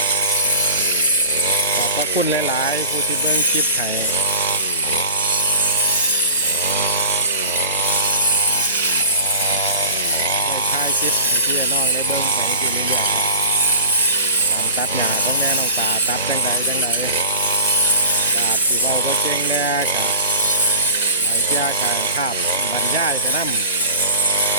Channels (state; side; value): inverted; both; correlation -0.37